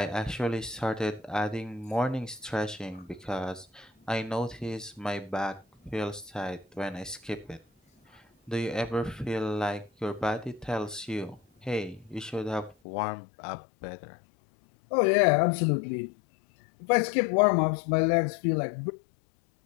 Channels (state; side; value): drops out; right; at 12.8 s